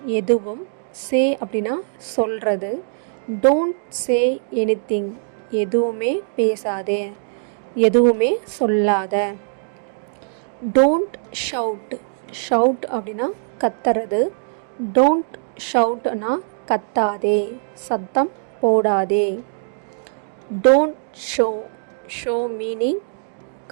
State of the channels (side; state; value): left; silent; digital silence